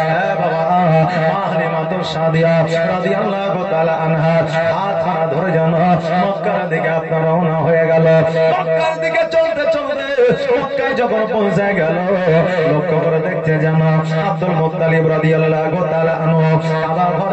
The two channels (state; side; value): identical; both; correlation 1.00